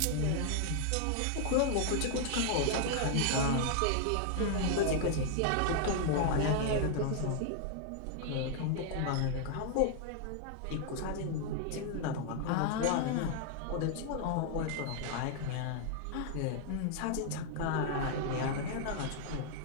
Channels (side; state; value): both; different; correlation 0.00